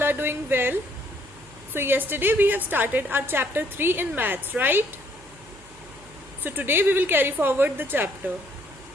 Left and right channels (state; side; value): noise; right; hum, 24 dB below the sound